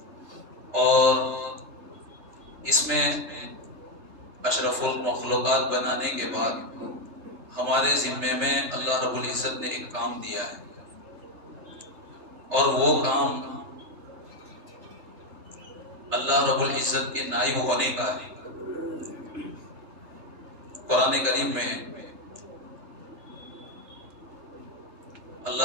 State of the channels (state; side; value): late; left; 2.9 ms